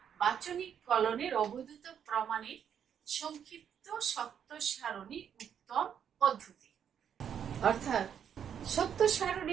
বাচনিক কলনের অবৈধতা প্রমাণের সংক্ষিপ্ত সত্য সারণী উত্তম পদ্ধতি। অর্থাৎ সত্য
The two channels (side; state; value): left; quieter; 8.4 dB